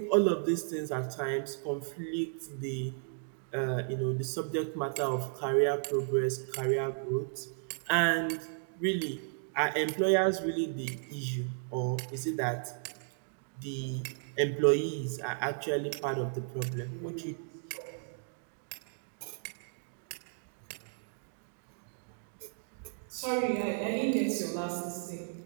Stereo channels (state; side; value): silent; left; digital silence